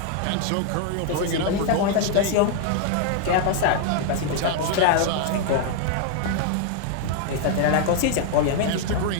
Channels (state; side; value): different; both; correlation 0.00